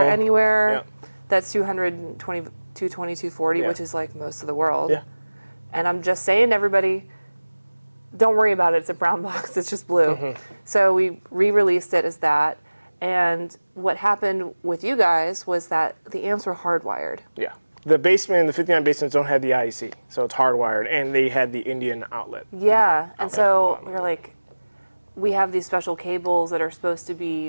anywhere. Yeah. That's 220, 240, which is like most of the world. Yeah. And I'm just saying to everybody, don't worry about it. It's a BrownBox. It's just blue. So we re-released it as that. And what happened with you guys was that the amps were hardwired. Yeah. The basement, the 59 basements don't have the IEC, so it's hardwired, and they had the Indian outlet. Yeah, and so we were like, we have these special cables that are supposed to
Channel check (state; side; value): inverted; both; correlation -1.00